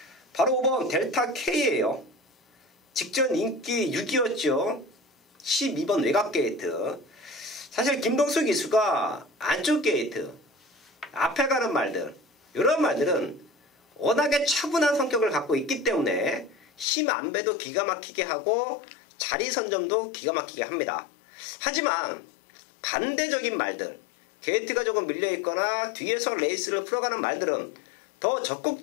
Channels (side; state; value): right; drops out; at 16.9 s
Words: 바로 5번 델타 K예요. 직전 인기 6위였죠. 12번 외곽 게이트. 사실 김동수 기수가 안쪽 게이트, 앞에 가는 말들, 이런 말들은 워낙에 차분한 성격을 갖고 있기 때문에 힘 안배도 기가 막히게 하고 자리 선점도 기가 막히게 합니다. 하지만 반대적인 말들, 게이트가 조금 밀려있거나 뒤에서 레이스를 풀어가는 말들은 더